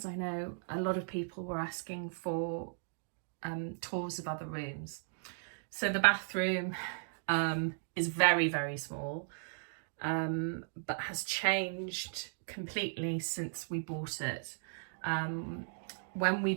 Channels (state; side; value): silent; left; digital silence